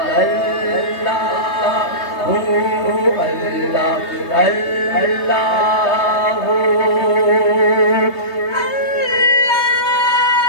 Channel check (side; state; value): right; late; 3.2 ms